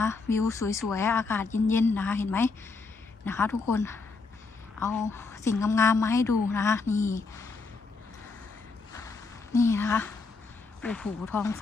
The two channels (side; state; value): right; quieter; 4.1 dB